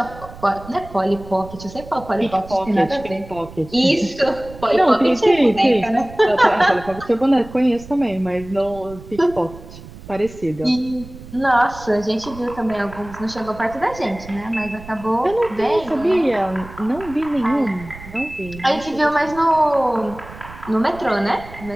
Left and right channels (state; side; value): noise; right; rumble, 17 dB below the sound